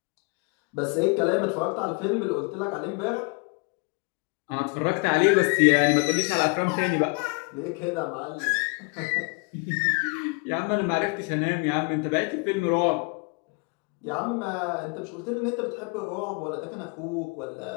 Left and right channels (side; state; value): right; quieter; 32.3 dB